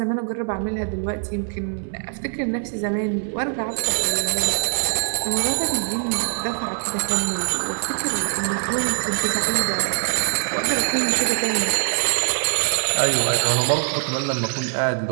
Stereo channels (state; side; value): silent; left; 60 dB below the other